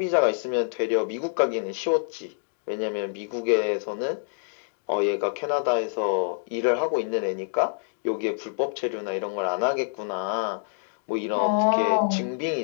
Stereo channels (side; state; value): right; silent; digital silence